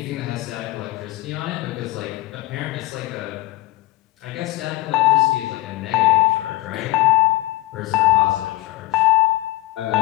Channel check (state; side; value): quieter; right; 17.9 dB